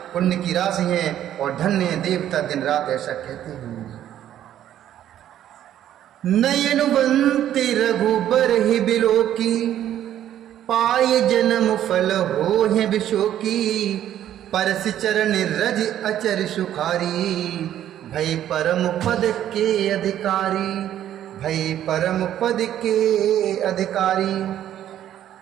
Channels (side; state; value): left; quieter; 11.3 dB